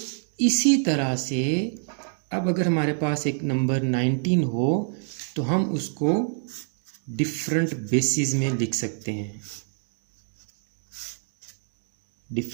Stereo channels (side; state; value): left; silent; 57 dB below the other